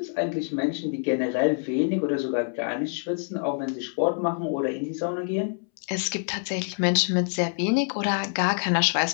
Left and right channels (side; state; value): right; silent; 61 dB below the other